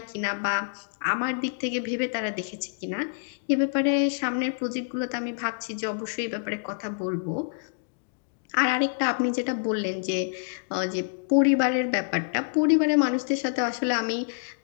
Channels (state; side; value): silent; right; digital silence